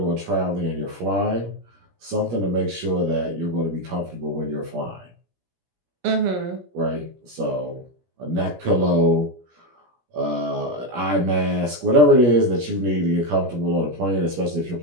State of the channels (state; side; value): late; left; 17 ms